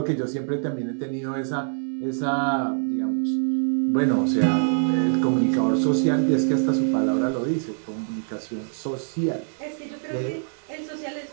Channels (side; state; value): left; silent; digital silence